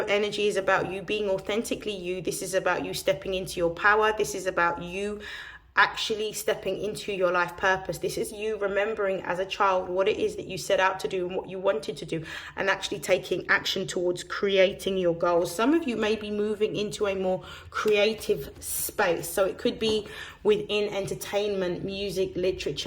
energy is about you being authentically you. This is about you stepping into your power. This is about you actually stepping into your life purpose. This is you remembering as a child what it is that you set out to do and what you wanted to do, and actually taking action towards creating your goals. Some of you may be moving into a more creative space, so it could be within entertainment, music,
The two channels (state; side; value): identical; both; correlation 1.00